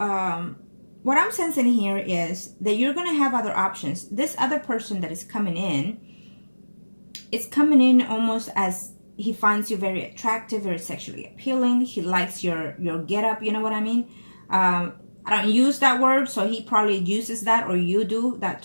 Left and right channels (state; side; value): inverted; both; correlation -1.00